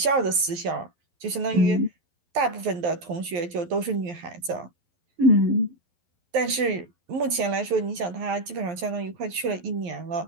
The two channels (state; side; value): late; left; 11 ms